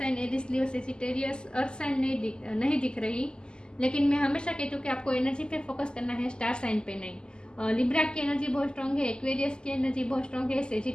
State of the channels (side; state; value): right; late; 0.047 ms